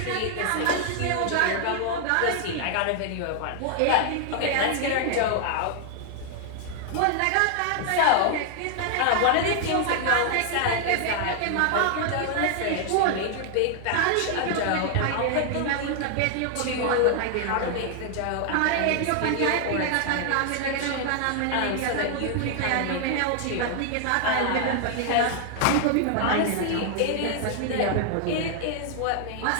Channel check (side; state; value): both; different; correlation 0.00